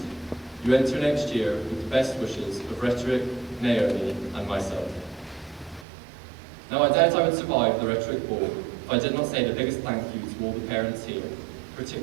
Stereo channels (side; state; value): left; drops out; at 5.9 s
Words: You enter next year with the best wishes of Rhetoric, Naomi, and myself. Now I doubt I would survive the Rhetoric Ball if I did not say the biggest thank you to all the parents here,